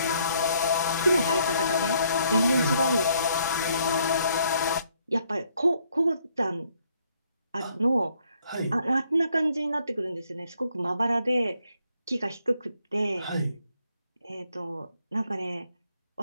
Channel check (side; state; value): both; inverted; correlation -0.69